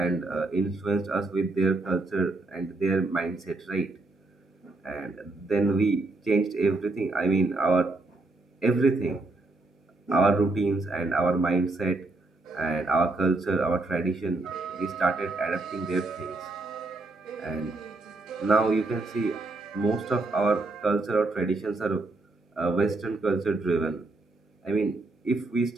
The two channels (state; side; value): quieter; left; 3.1 dB